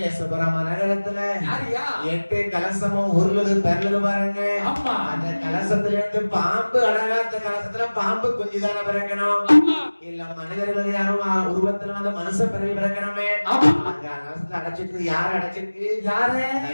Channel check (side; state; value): both; inverted; correlation -1.00